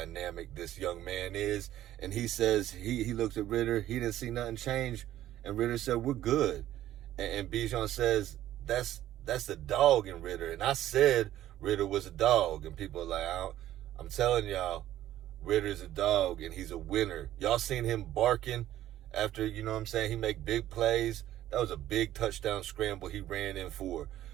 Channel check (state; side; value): quieter; left; 13.2 dB